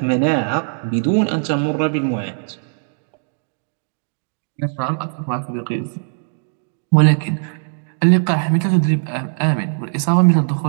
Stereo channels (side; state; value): left; silent; digital silence